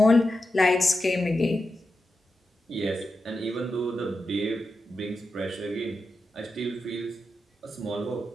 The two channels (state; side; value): normal; both; correlation 0.89